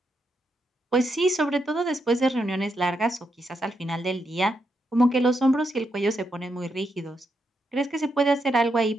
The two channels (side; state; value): both; normal; correlation 0.82